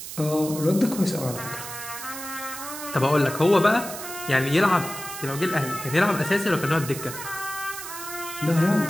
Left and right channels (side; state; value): right; noise; hiss, 9 dB below the sound